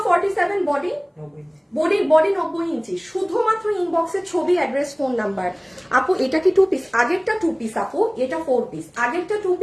47, বডি 90 ইঞ্চি। শুধুমাত্র ইনবক্সে ছবি, অ্যাড্রেস, ফোন নাম্বার। আপু এটা কি 2 পিস? আগেরটা 2 পিস আপু, এটা 4 পিস। আগেরটা 2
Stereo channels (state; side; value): identical; both; correlation 1.00